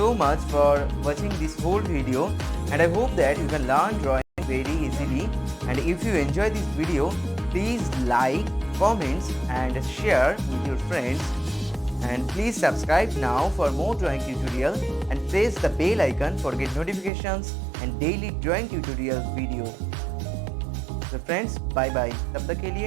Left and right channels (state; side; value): drops out; left; at 17.1 s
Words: much for watching this whole video, and I hope that you can learn drawing very easily. And if you enjoy this video, please like, comments and share with your friends. And please subscribe now for more drawing tutorial and press the bell icon for get notifications and daily drawing tutorial video. So friends, bye bye. तब तक के